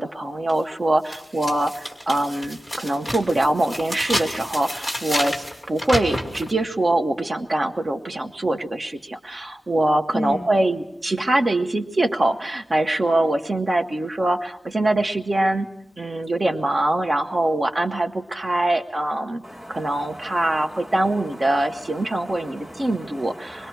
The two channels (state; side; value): normal; both; correlation 0.94